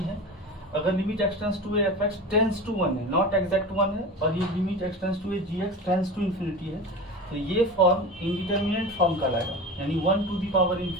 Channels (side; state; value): both; normal; correlation 0.30